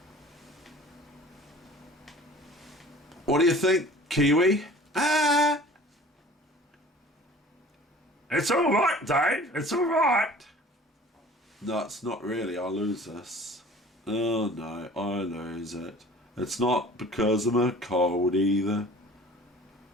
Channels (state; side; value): normal; both; correlation 0.46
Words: What do you think, Kiwi? Ah! It's all right, Dave. It's all right. No, it's not really. I lose this. Oh no, I lose it. It's not because I'm a cold either.